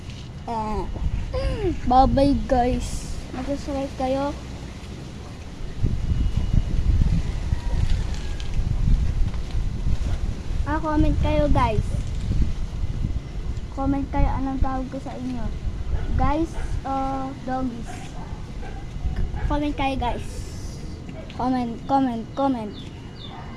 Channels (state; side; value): identical; both; correlation 1.00